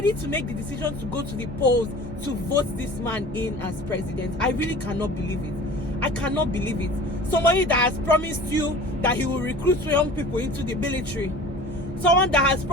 to make the decision to go to the polls to vote this man in as president. I really cannot believe it. I cannot believe it. Somebody that has promised you that he will recruit young people into the military. Someone that has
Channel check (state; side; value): normal; both; correlation 0.41